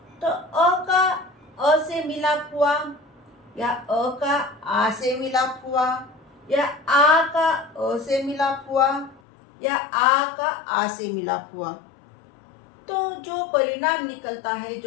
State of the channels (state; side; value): drops out; right; at 9.2 s